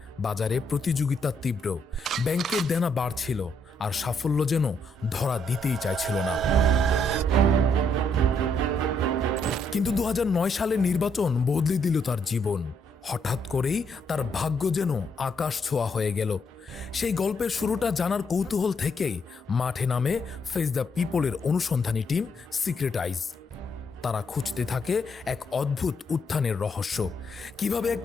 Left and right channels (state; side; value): normal; both; correlation 0.74